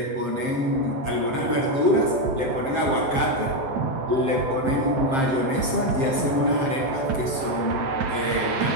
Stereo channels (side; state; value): left; late; 7.6 ms